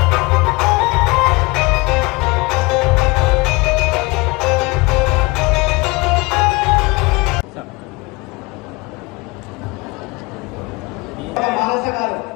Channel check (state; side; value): quieter; right; 25.1 dB